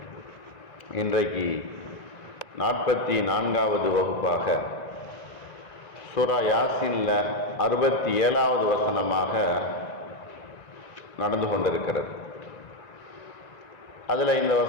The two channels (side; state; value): right; late; 1.9 ms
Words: இன்றைக்கு 44வது வகுப்பாக சூரா யாசீனில் 67வது வசனமாக நடந்து கொண்டிருக்கிறது. அதில் இந்த